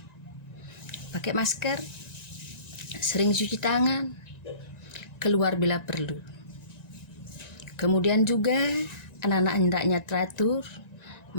Pakai masker, sering cuci tangan, keluar bila perlu. Kemudian juga anak-anak hendaknya teratur,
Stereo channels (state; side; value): late; right; 1.9 ms